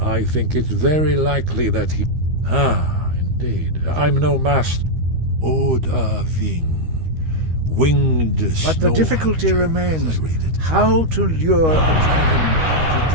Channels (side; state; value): left; late; 13 ms